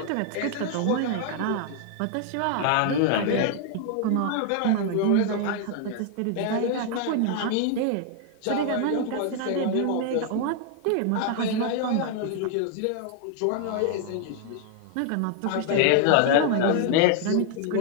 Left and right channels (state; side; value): different; both; correlation 0.00